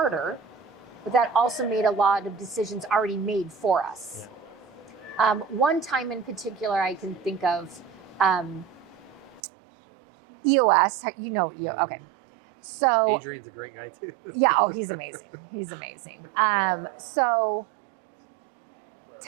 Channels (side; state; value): left; drops out; at 9.4 s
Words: but that also made a lot of decisions already made for us. One time in particular I can think of, EOS, okay. So Adrian's a great guy too. Yeah, he's amazing. He's amazing. So